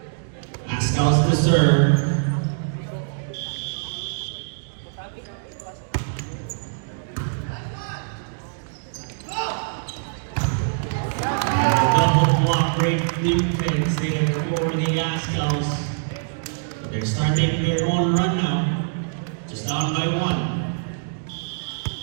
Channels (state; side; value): silent; left; digital silence